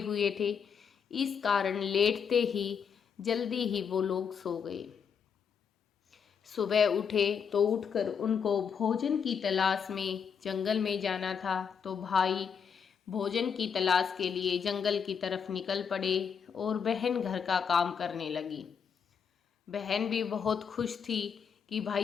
थे, इस कारण लेटते ही जल्दी ही वो लोग सो गए। सुबह उठे तो उठकर उनको भोजन की तलाश में जंगल में जाना था, तो भाई भोजन की तलाश के लिए जंगल की तरफ निकल पड़े और बहन घर का काम करने लगी। बहन भी बहुत खुश थी कि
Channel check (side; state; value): right; quieter; 6.9 dB